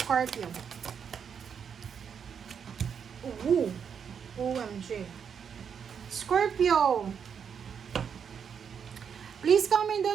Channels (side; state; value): left; quieter; 7.2 dB